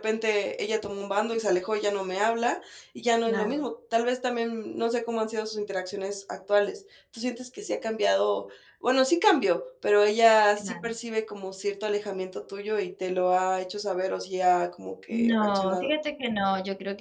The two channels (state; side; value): identical; both; correlation 1.00